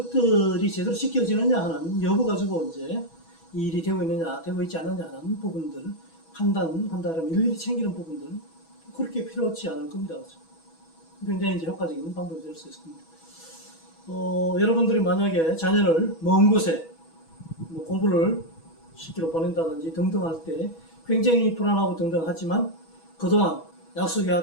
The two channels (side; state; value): right; late; 6.2 ms